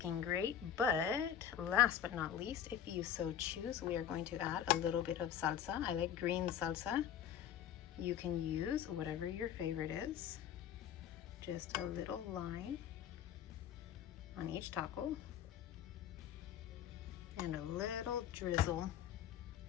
great, but last but not least, if you so choose, we are going to add a little bit of salsa. I like green salsa. You can use whatever your favorite is. Just a little line on each taco and a little drizzle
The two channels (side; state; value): right; quieter; 9.6 dB